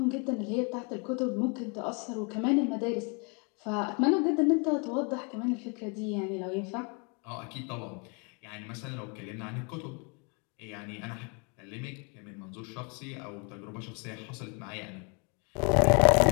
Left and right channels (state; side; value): quieter; right; 34.2 dB